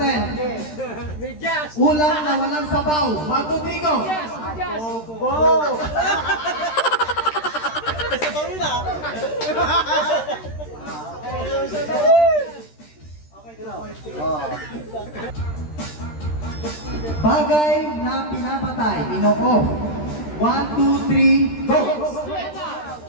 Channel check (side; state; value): right; late; 13 ms